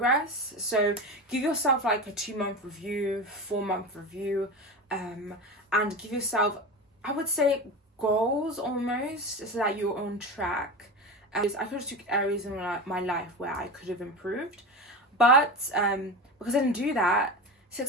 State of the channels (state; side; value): normal; both; correlation 0.25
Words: So give yourself like a 2-month review, 4-month review, and give yourself, I would say, goals almost, so that you're on track. I could have took areas in my life where I could have improved, but because I didn't do that,